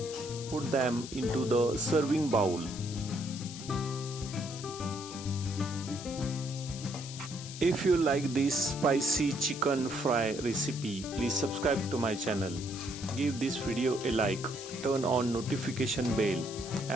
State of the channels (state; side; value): noise; left; hiss, 12 dB below the sound